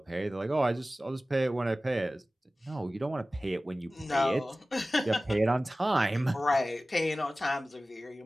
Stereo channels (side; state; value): both; normal; correlation 0.97